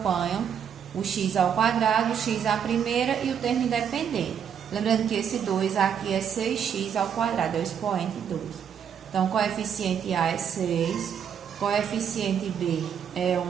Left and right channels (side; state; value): left; quieter; 8.1 dB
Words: o x ao quadrado, o x à primeira e o termo independente. Lembrando que esse 2 aqui é 6x ao quadrado, é o expoente 2. Então, coeficiente A é 6, coeficiente B é